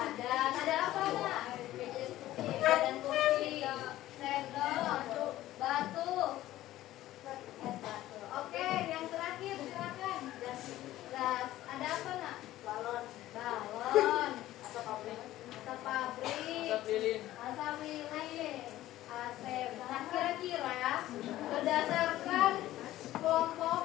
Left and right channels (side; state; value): right; quieter; 14.9 dB